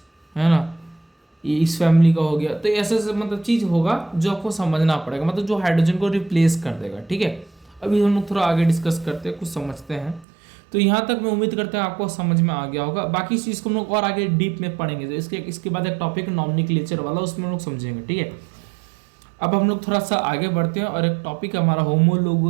है ना। ये इस फैमिली का हो गया। तो ऐसे ऐसे मतलब चीज होगा जो आपको समझना पड़ेगा, मतलब जो हाइड्रोजन को रिप्लेस कर देगा, ठीक है। अभी हम लोग थोड़ा आगे डिस्कस करते हैं, कुछ समझते हैं। तो यहाँ तक मैं उम्मीद करता हूँ आपको समझ में आ गया होगा। बाकी इस चीज़ को हम लोग और आगे डीप में पढ़ेंगे, तो इसके बाद एक टॉपिक नॉमेनक्लेचर वाला, उसमें हम लोग समझेंगे, ठीक है। अब हम लोग थोड़ा सा आगे बढ़ते हैं, और एक टॉपिक हमारा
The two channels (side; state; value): left; drops out; at 10.2 s